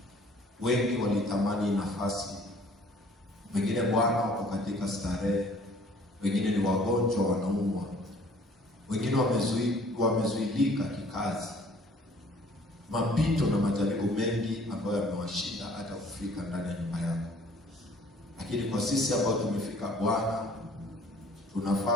Wengi walitamani nafasi, wengine Bwana wako katika starehe, wengine ni wagonjwa wanaumwa, wengine wamezuilika kikazi, mapito na majaribu mengi ambayo yamewashinda hata kufika ndani ya nyumba yako. Lakini kwa sisi ambao tumefika Bwana,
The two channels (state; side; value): normal; both; correlation 0.55